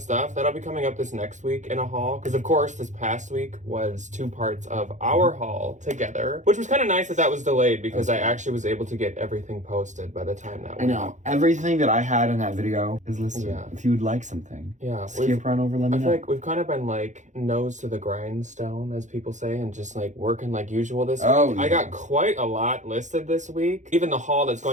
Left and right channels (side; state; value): left; late; 0.35 ms